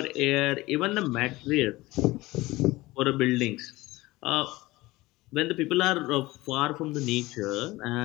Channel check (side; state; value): right; quieter; 19.7 dB